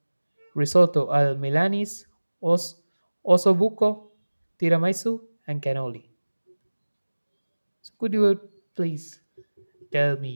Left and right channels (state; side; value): inverted; both; correlation -1.00